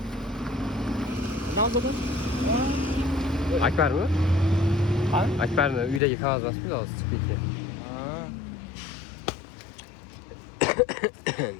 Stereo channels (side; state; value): right; drops out; at 6.0 s